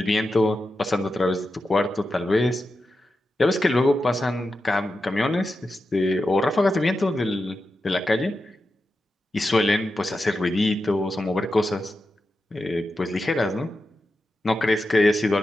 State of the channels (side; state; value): both; normal; correlation 0.90